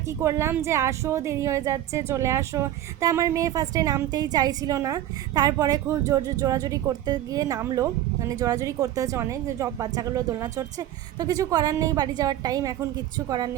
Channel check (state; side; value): quieter; left; 12.6 dB